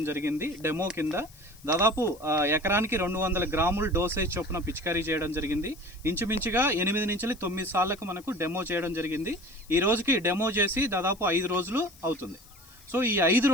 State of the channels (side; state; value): left; noise; hiss, 24 dB below the sound